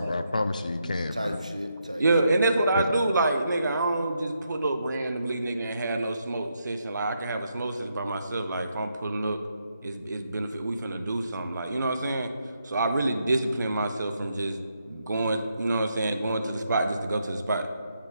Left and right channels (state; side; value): inverted; both; correlation -0.80